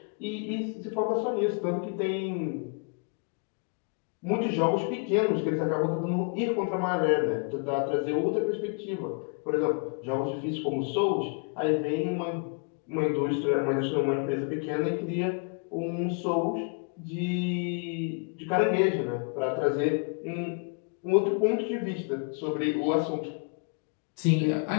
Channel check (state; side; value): quieter; right; 37.7 dB